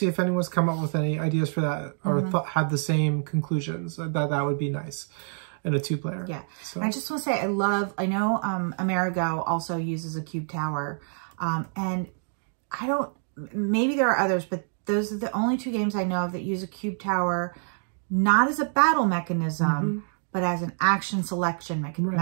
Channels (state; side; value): silent; left; 60 dB below the other